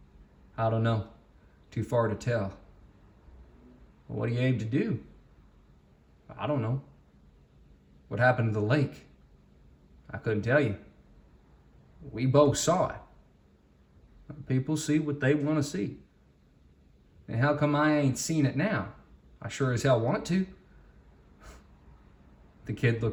"I don't know. Too far to tell." "Well, what do you aim to do?" "I don't know." "What happened to the lake?" "I couldn't tell you." "We both saw it." "People see what they want to see." "And how come I ain't seen it now? I sure as hell want to." The kid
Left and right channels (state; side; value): identical; both; correlation 1.00